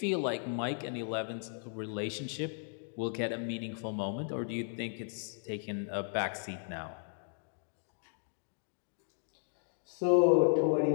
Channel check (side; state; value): right; silent; digital silence